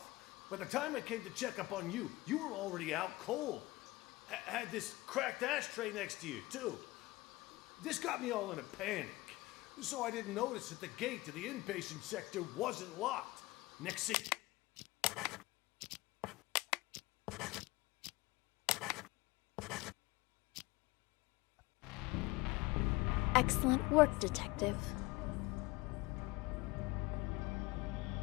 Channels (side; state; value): right; quieter; 20.8 dB